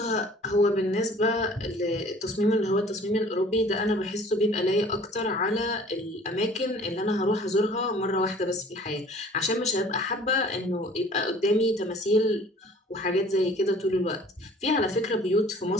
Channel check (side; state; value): both; normal; correlation 0.50